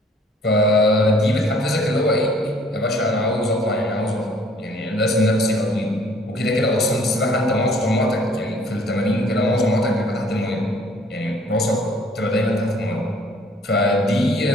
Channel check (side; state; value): both; normal; correlation 0.57